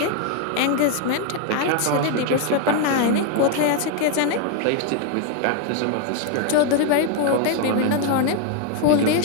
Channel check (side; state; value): both; different; correlation 0.00